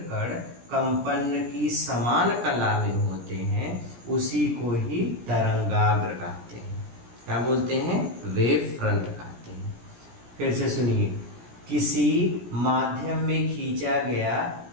कण कंपन की समान कला में होते हैं, उसी को ही तरंगाग्र कहते हैं। क्या बोलते हैं? वेव फ्रंट कहते हैं। फिर से सुनिए, किसी माध्यम में खींचा गया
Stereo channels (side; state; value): left; late; 17 ms